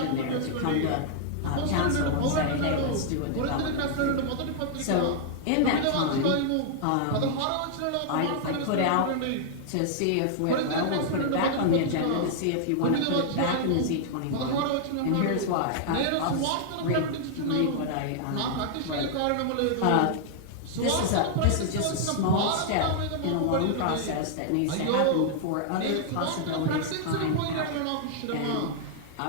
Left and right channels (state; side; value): different; both; correlation -0.01